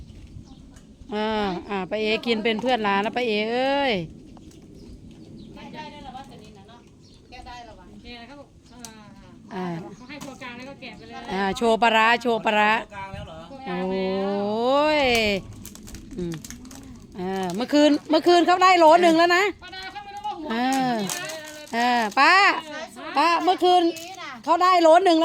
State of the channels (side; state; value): both; identical; correlation 1.00